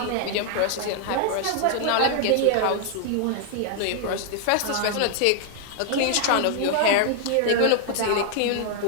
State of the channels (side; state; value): both; different; correlation 0.00